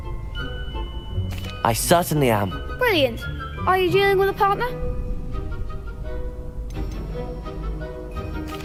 I certainly am. Brilliant. Are you dealing with a partner?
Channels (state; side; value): identical; both; correlation 1.00